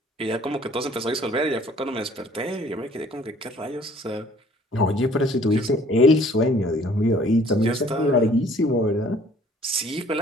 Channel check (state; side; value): normal; both; correlation 0.56